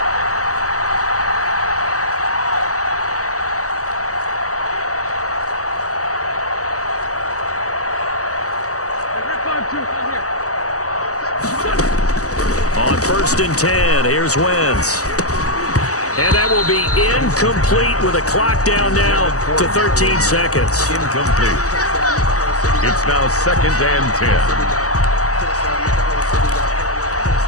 On 1st and 10, here's Wentz. And that will be incomplete with a clock down now to 13 seconds. Incomplete. It's now 2nd and 10.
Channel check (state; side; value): late; right; 0.66 ms